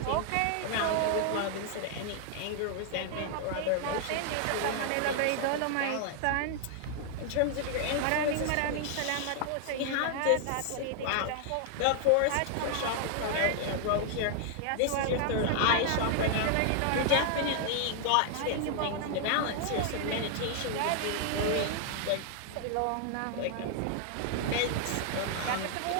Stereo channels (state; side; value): different; both; correlation 0.00